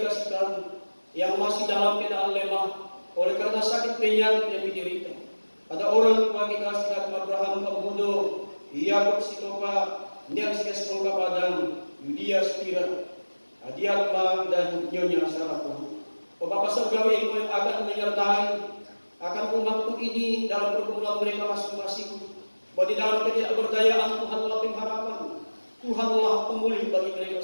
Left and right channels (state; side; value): inverted; both; correlation -1.00